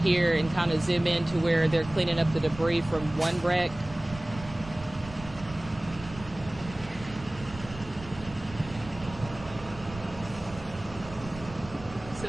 and kind of zoom in to where they're cleaning up the debris from one wreck.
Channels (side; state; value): right; noise; rumble, 15 dB below the sound